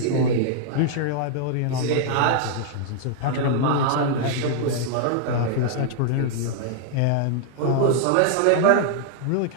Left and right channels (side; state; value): both; different; correlation -0.01